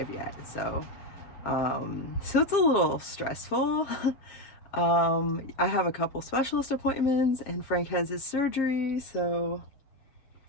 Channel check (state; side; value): late; right; 7.6 ms